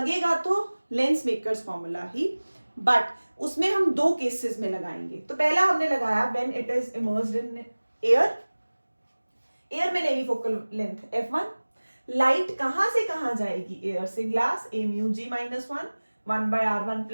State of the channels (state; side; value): inverted; both; correlation -1.00